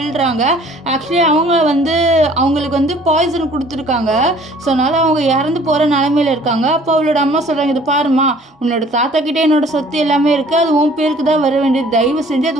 ஆக்சுவலி அவங்க வந்து அவங்களுக்கு வந்து பாய்சன் கொடுத்துருக்காங்க. ஸோ அதனால் அவங்க இறந்து போகிற நிலைமையில் இருக்காங்க. அப்போ அவளோட அம்மா சொல்கிறாங்க, இது பாருமா, உன்னோட தாத்தா கிட்டே என்னோட சொத்து எல்லாமே இருக்குது, அது உன் பேருக்கு தான் வர வேண்டியது, தயவு செஞ்சு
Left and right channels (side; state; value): both; normal; correlation 0.54